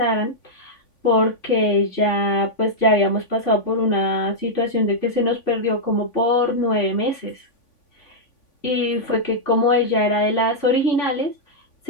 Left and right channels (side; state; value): right; late; 3.5 ms